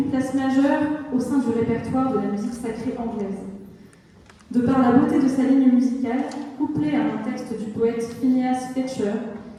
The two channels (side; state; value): both; identical; correlation 1.00